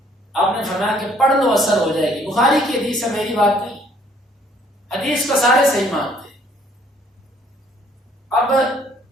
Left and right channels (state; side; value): normal; both; correlation 0.62